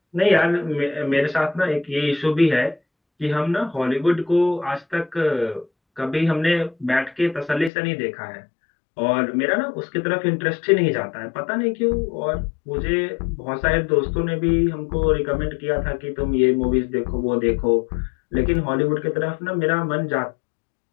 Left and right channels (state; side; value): drops out; right; at 7.7 s